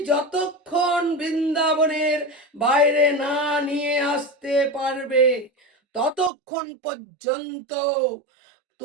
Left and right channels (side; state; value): left; drops out; at 6.3 s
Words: যতক্ষণ বৃন্দাবনের বাইরে না নিয়ে আসতে পারবে, ততক্ষণ পর্যন্ত